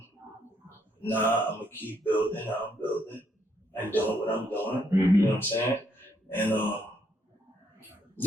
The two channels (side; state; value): both; normal; correlation 0.73